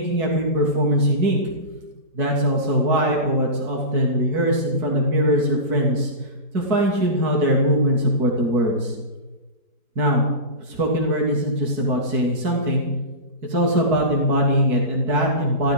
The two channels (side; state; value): left; late; 4.6 ms